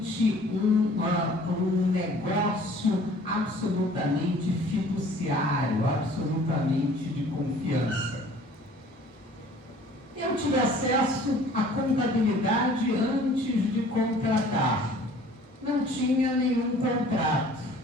um negócio absolutamente fiduciário, absolutamente de confiança. Eu tive acesso à contabilidade antes de contratar. Não tinha nenhum contrato.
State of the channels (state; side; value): normal; both; correlation 0.51